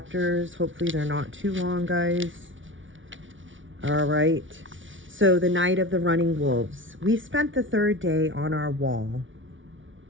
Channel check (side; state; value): left; late; 0.56 ms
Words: Hopefully they're not too long, guys. All right. So the night of the running wolves. We spent the 3rd day on our wall,